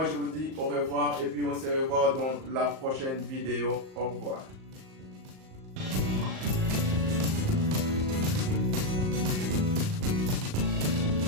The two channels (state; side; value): late; left; 38 ms